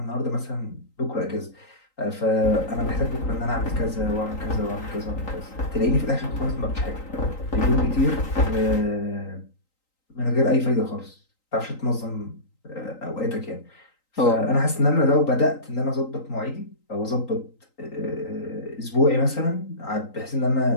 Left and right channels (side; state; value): right; late; 3.9 ms